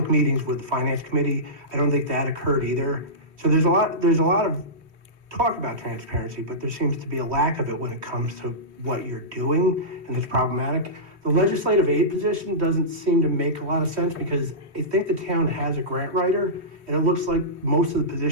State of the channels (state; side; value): late; left; 3.1 ms